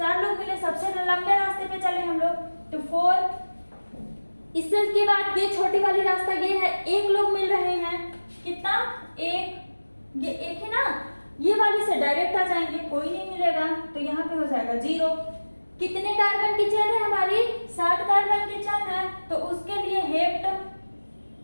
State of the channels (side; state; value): both; inverted; correlation -1.00